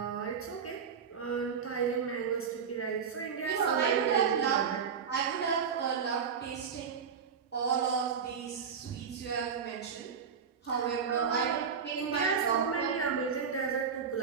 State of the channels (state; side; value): quieter; left; 6.6 dB